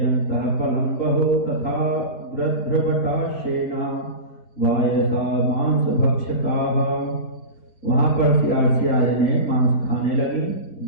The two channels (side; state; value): right; late; 4.4 ms